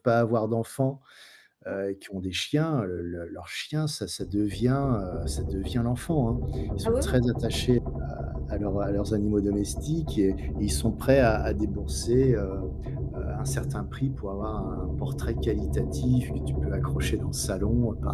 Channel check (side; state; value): both; identical; correlation 1.00